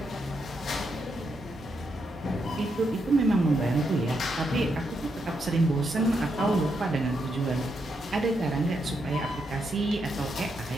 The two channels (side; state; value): both; normal; correlation 0.81